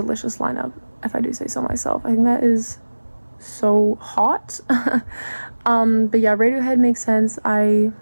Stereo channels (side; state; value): both; inverted; correlation -1.00